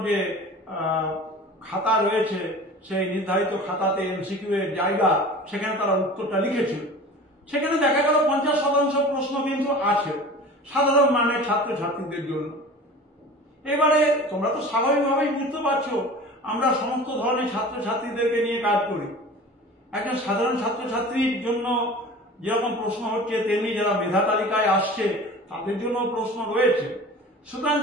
যে খাতা রয়েছে, সেই নির্ধারিত খাতাতে এমসিকিউ এর জায়গা, সেখানে তারা উত্তরটা লিখেছিল। সেখানে দেখা গেল 50% প্রশ্ন কিন্তু আছে সাধারণ মানের ছাত্রছাত্রীদের জন্য। এবারে তোমরা তো স্বাভাবিকভাবেই বুঝতে পারছো, আমরা সমস্ত ধরনের ছাত্রছাত্রীদেরকে নিয়ে কাজ করি। একজন সাধারণ ছাত্রছাত্রীর জন্য যেরকম প্রশ্ন হচ্ছে, তেমনি যারা মেধা তালিকায় আসছে তাদের জন্য প্রশ্ন রয়েছে। সুতরাং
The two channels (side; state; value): both; normal; correlation 0.39